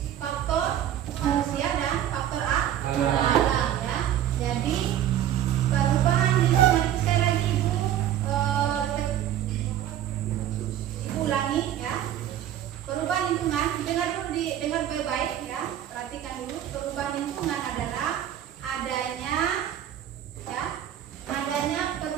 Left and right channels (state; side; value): quieter; left; 11.1 dB